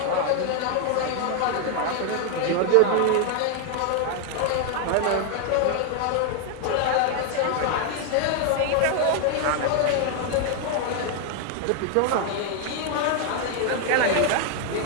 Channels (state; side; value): different; both; correlation 0.00